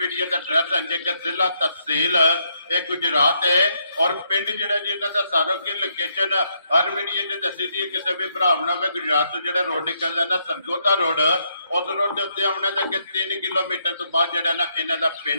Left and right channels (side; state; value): both; inverted; correlation -0.75